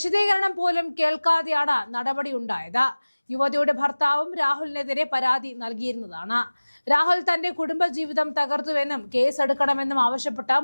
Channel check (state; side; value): inverted; both; correlation -1.00